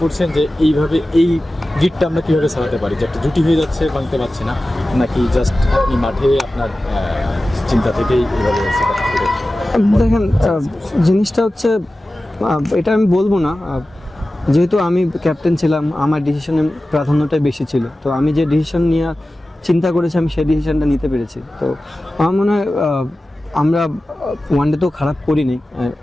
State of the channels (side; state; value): both; normal; correlation 0.95